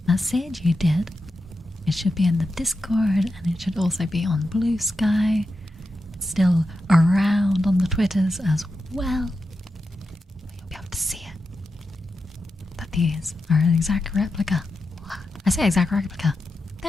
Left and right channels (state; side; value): normal; both; correlation 0.89